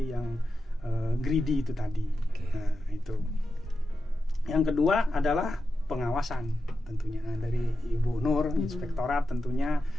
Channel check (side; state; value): both; normal; correlation 0.90